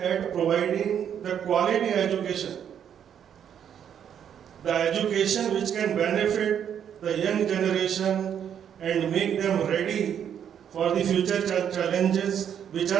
providing the quality education. The education which can benefit the young generation and make them ready for the future challenges which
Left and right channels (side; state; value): left; quieter; 8.8 dB